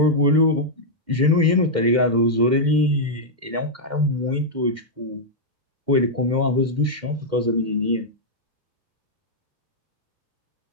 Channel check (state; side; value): late; left; 2.1 ms